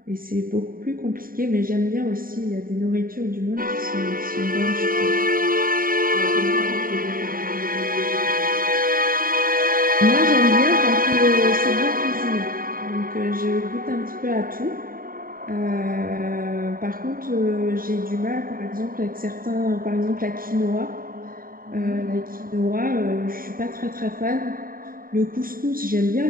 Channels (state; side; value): late; left; 0.41 ms